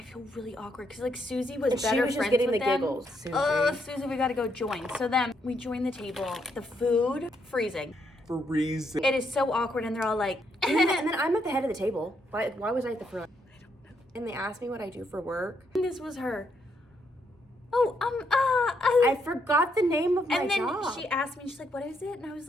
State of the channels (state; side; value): normal; both; correlation 0.76